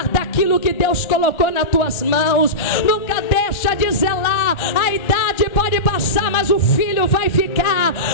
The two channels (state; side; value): late; right; 1.3 ms